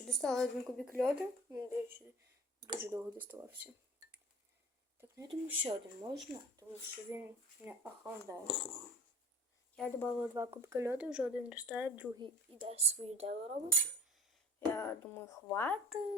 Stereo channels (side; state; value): both; normal; correlation 0.44